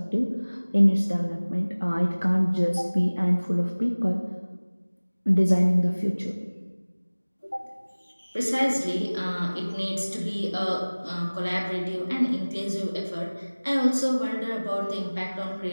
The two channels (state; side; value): inverted; both; correlation -1.00